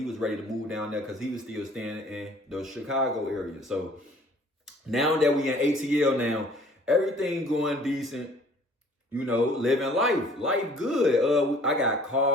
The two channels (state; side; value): normal; both; correlation 0.55